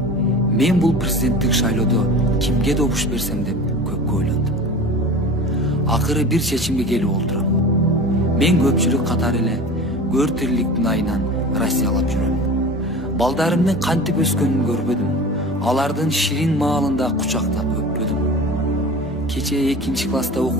мен бул президенттик шайлоодо кимге добуш берсем деп көпкө ойлондум. Акыры бир чечимге келип олтурам. Мен көпчүлүк катары эле көр тириликтин айынан Россиялап жүрөм. Балдарымдын кантип өскөнүн көрбөдүм. Алардын ширин маалында кучактап өппөдүм. Кече 2 класста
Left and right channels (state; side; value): normal; both; correlation 0.36